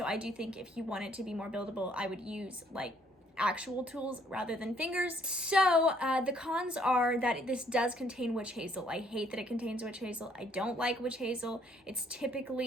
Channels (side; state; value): both; normal; correlation 0.65